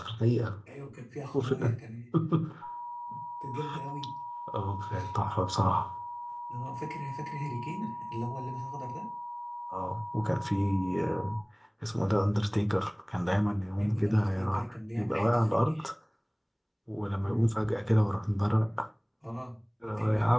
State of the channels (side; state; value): both; identical; correlation 1.00